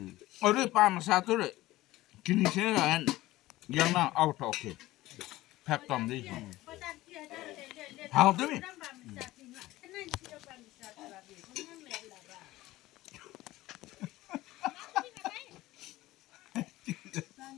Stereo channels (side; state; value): right; quieter; 17.2 dB